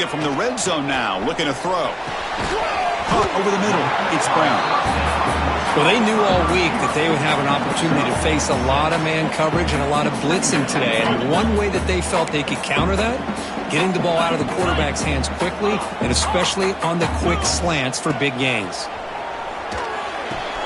from the red zone now. Looking to throw. Over the middle. It's Brown. Well, they knew all week that they would have an opportunity to face a lot of man coverage and a lot of blitzing today. And one way that they felt they could counter that, getting the ball out of the quarterback's hands quickly, and especially on the quick slants for big gains.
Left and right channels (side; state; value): both; identical; correlation 1.00